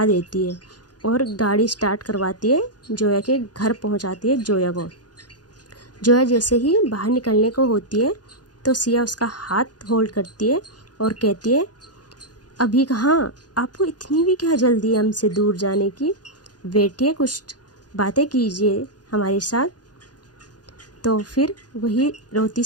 देती है और गाड़ी स्टार्ट करवाती है, जोया के घर पहुंचाती है जोया को। जोया जैसे ही बाहर निकलने को होती है तो सिया उसका हाथ होल्ड करती है और कहती है, अभी कहाँ, आपको इतनी भी क्या जल्दी है हमसे दूर जाने की? बैठिए, कुछ बातें कीजिए हमारे साथ। तो फिर वही रोती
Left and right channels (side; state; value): right; late; 0.69 ms